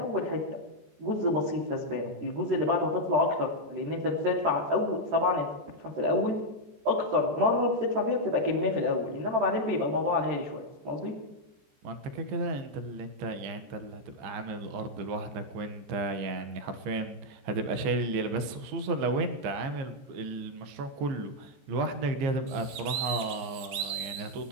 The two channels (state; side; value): late; left; 15 ms